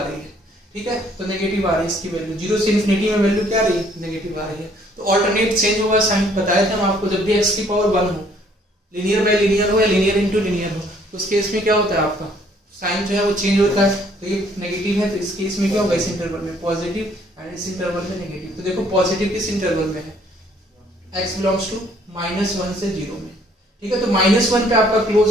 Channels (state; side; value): normal; both; correlation 0.63